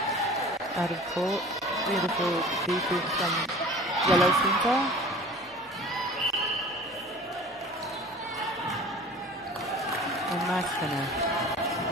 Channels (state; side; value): normal; both; correlation 0.42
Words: Out of court, beautiful defense from Yellow Centre. And nice finish.